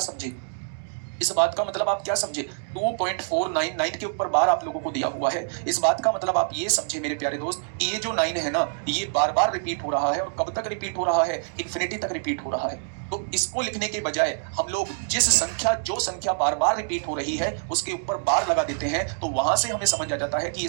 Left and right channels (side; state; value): left; silent; digital silence